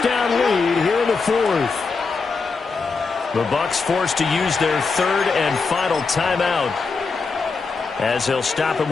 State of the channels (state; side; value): quieter; right; 4.6 dB